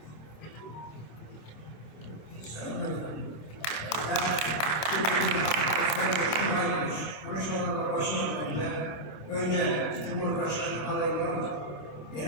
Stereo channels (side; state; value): right; late; 25 ms